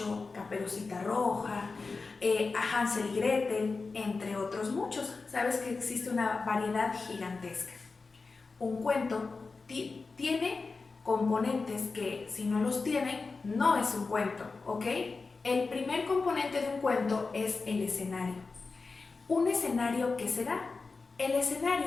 Caperucita Roja, Hansel y Gretel, entre otros muchos. Sabes que existe una variedad gigantesca. Un cuento tiene componentes que, si no los tienen, no es un cuento, ¿ok? El primer componente de un cuento es el escenario. ¿Un escenario qué será? El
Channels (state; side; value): quieter; right; 4.2 dB